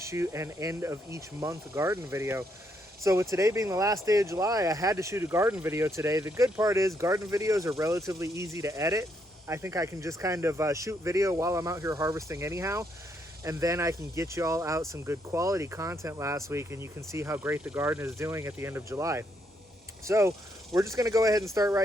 shoot an end of each month garden video. So with today being the last day of July, I had to shoot a garden video today. The good part is garden videos are relatively easy to edit. I think I can just kind of shoot video while I'm out here harvesting anyhow. And then I can get you all out some good quality content last week, and you can see how great the garden is doing at the end of July. So we're just going to go ahead and start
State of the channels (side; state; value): both; normal; correlation 0.75